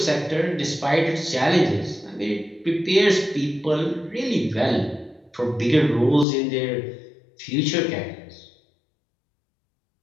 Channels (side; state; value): right; drops out; at 6.2 s